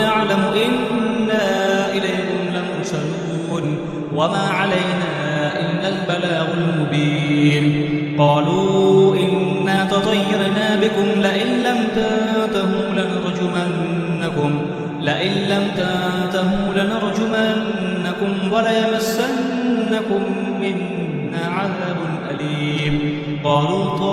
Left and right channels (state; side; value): identical; both; correlation 1.00